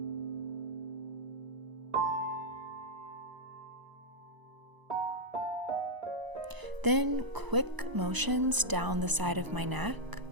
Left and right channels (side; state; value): left; late; 1.0 ms